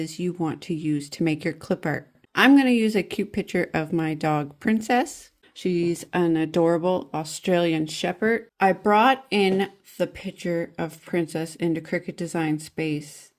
you want to use to make your clip art. I'm going to use a cute picture of my dog Princess. She's an adorable Australian Shepherd. I brought in the picture of Princess into Cricut Design Space.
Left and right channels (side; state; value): both; identical; correlation 1.00